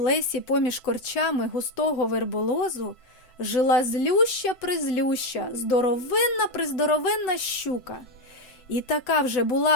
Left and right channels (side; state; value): right; late; 8.0 ms